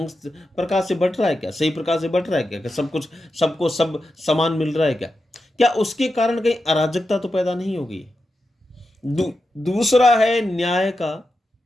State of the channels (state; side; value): normal; both; correlation 0.89